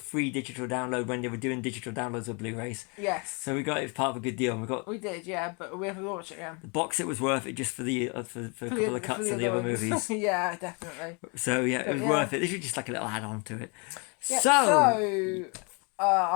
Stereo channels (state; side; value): quieter; right; 33.0 dB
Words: digital download when they were doing digital downloads of Blu-rays. Yes. So we got it as part of a good deal. And we did, yeah, but we haven't watched it again. The box set was worth it just for the for a couple of cuts of the other movies. Yeah, definitely. So yeah, it was worth it. This was just like a little add-on to it. Yeah, so